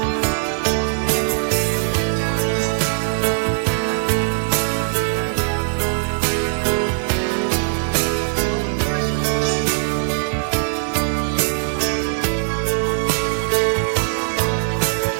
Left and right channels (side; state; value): left; silent; digital silence